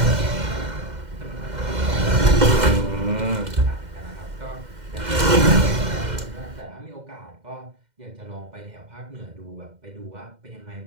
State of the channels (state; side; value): late; left; 2.1 ms